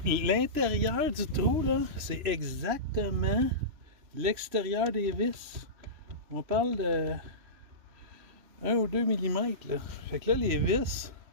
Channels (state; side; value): late; left; 3.0 ms